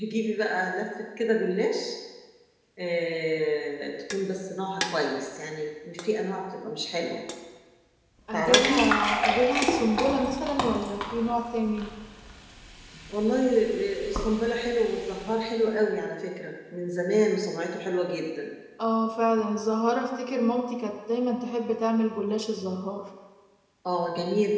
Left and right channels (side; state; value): both; identical; correlation 1.00